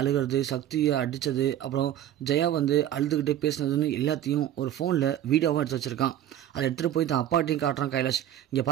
அழுகிறது, சக்தியை அடித்தது, அப்புறம் ஜெயா வந்து அழுதுகிட்டே பேசினதுன்னு எல்லாத்தையும் ஒரு ஃபோனில் வீடியோவாக எடுத்து வச்சுருக்கான். அதை எடுத்துகிட்டு போய் தான் அப்பாட்டையும் காட்டுறான் கைலாஷ். இங்கே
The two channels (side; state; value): left; quieter; 11.4 dB